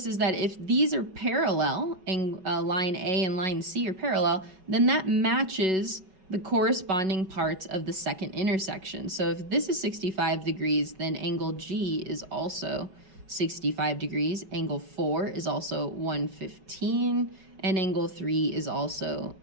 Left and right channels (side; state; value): left; late; 5.3 ms